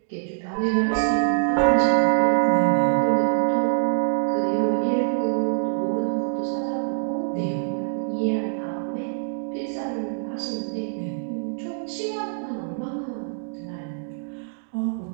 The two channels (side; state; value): left; silent; digital silence